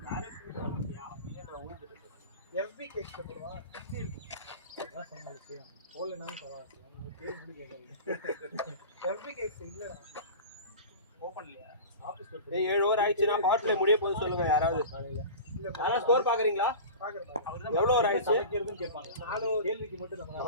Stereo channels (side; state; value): both; inverted; correlation -0.34